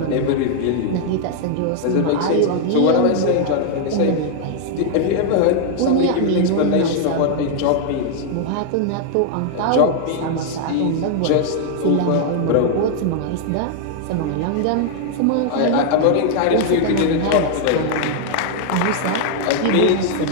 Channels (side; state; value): both; different; correlation 0.00